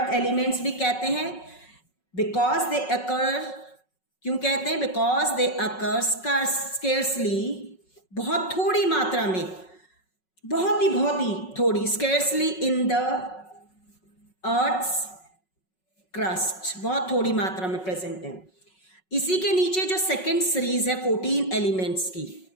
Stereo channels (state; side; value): late; right; 5.4 ms